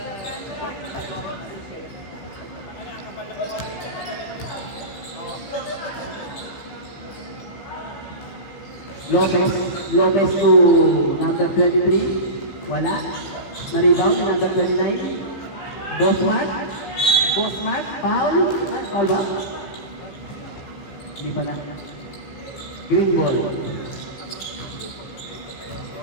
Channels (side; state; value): right; late; 15 ms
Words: Lopez to number 23. Wala. Na-rebound ni number 29. Bosmart. Foul. Foul ba? Hindi pala. Green ball.